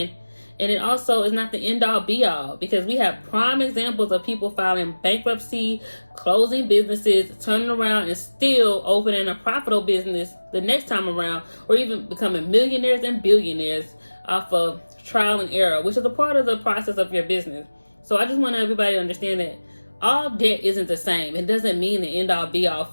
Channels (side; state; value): both; inverted; correlation -1.00